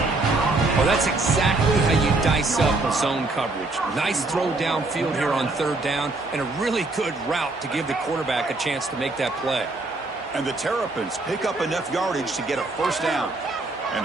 Well, that's exactly how you dice up a zone coverage. Nice throw downfield here on 3rd down, and a really good route to give the quarterback a chance to make that play. And the Terrapins pick up enough yardage to get a 1st down. And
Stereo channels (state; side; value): quieter; left; 3.1 dB